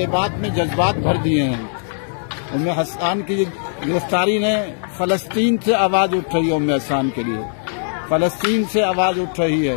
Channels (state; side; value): silent; right; digital silence